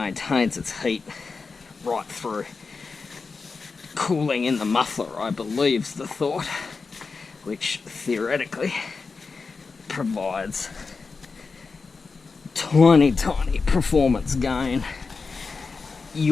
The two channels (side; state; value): right; quieter; 4.5 dB